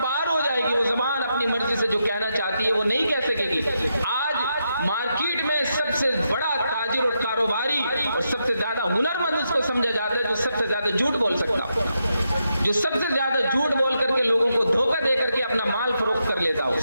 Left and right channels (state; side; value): inverted; both; correlation -0.83